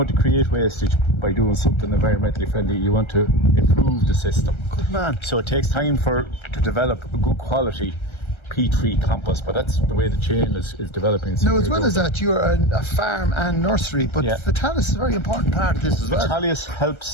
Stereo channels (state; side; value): late; right; 1.3 ms